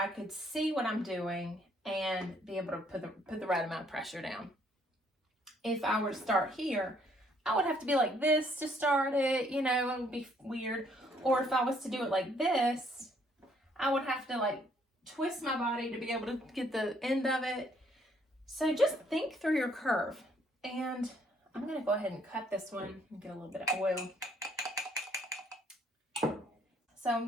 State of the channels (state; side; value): normal; both; correlation 0.66